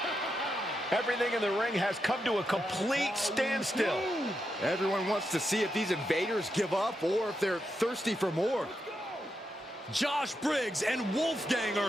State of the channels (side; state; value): both; normal; correlation 0.85